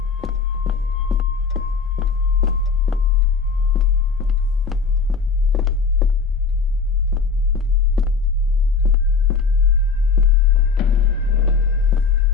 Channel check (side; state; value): right; quieter; 5.0 dB